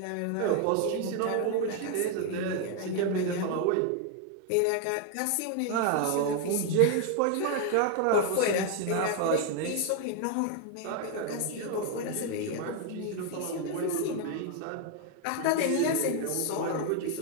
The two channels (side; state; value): both; different; correlation 0.01